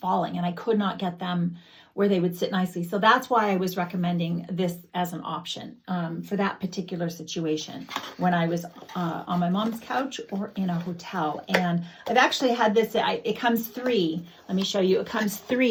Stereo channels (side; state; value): both; identical; correlation 1.00